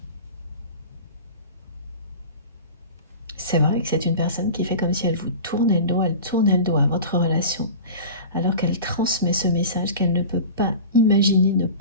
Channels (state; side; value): inverted; both; correlation -0.35